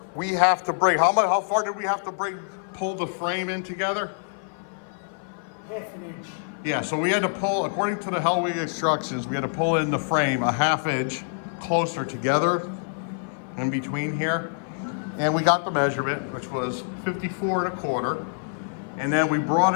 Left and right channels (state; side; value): silent; right; 55 dB below the other